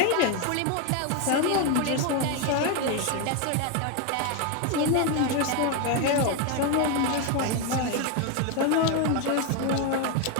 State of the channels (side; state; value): both; different; correlation 0.02